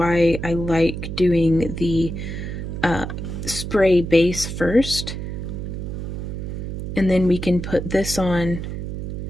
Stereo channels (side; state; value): right; noise; hum, 6 dB below the sound